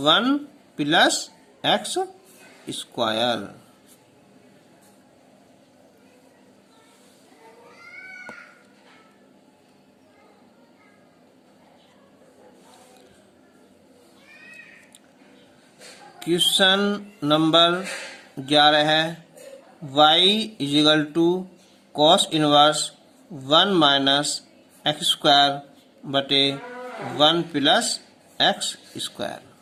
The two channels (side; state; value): both; identical; correlation 1.00